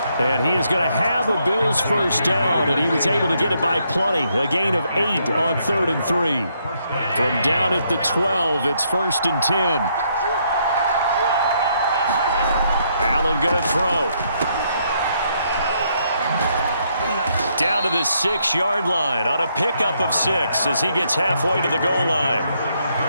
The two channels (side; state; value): both; inverted; correlation -0.74